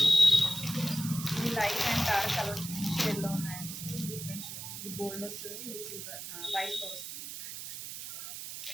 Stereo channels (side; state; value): right; noise; hiss, 9 dB below the sound